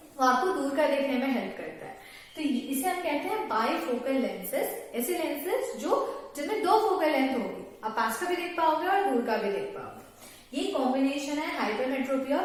वो आपको दूर का देखने में हेल्प करता है। तो इसे हम कहते हैं बाइफोकल लेंसेज, ऐसे लेंसेज जो जिनमें दो फोकल लेंथ होगी, आप पास का भी देख पाओगे और दूर का भी देख पाओगे। ये कॉम्बिनेशन है हाइपरमेट्रोपिया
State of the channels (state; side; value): identical; both; correlation 1.00